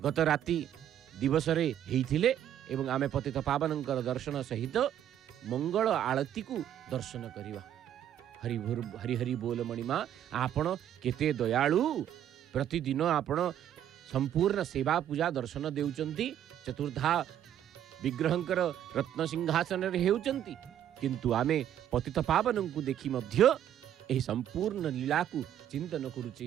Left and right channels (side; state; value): left; quieter; 10.7 dB